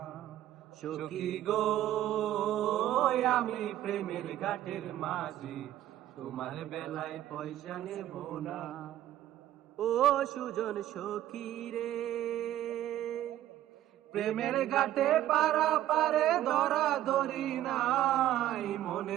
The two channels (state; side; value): quieter; left; 13.0 dB